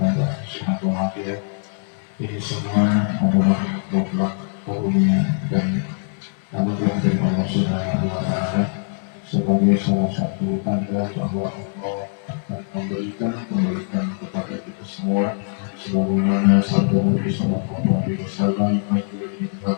sehat walafiat. Ini semua adalah mutlak karunia dan anugerah dari Allah Subhanahu wa Ta'ala sebagai salah satu tanda bahwa Allah akan memberikan kepada kita semua sebagaimana sabda Nabi Sallallahu Alaihi Wasallam,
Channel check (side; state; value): right; silent; 64 dB below the other